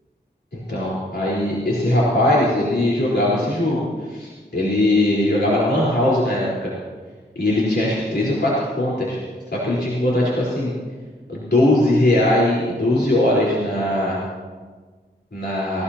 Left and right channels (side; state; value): both; normal; correlation 0.62